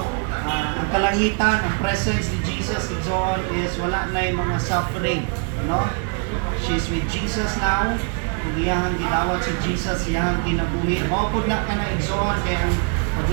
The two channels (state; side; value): quieter; left; 39.4 dB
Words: Ang kalangitan, ang presence ni Jesus and so on is wala na yung mga suffering, no? She's with Jesus now. Kung iyang gidawat si Jesus, iyang kinabuhi. Mapod na ka na igsoon, kaya ang